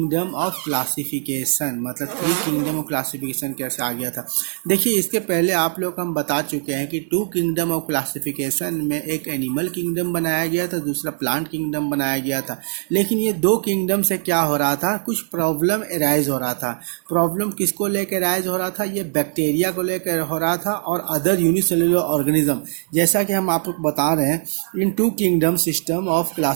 ऑफ क्लासिफिकेशन, मतलब 3 किंगडम ऑफ क्लासिफिकेशन कैसे आ गया था। देखिए इसके पहले आप लोग को हम बता चुके हैं कि 2 किंगडम ऑफ क्लासिफिकेशन में एक एनिमल किंगडम बनाया गया था, दूसरा प्लांट किंगडम बनाया गया था। लेकिन ये 2 किंगडम से क्या हो रहा था, कुछ प्रॉब्लम एराइज हो रहा था। प्रॉब्लम किसको लेकर एराइज हो रहा था, ये बैक्टीरिया को लेकर हो रहा था और अदर यूनिसेलुलर ऑर्गेनिज्म। जैसा कि हम आपको बता रहे हैं, इन 2 kingdom system of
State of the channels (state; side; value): silent; left; 58 dB below the other